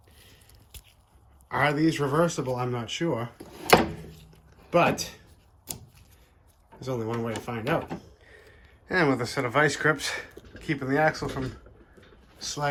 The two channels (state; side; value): identical; both; correlation 1.00